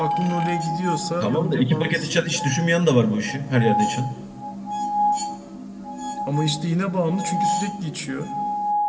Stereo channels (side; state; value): both; identical; correlation 1.00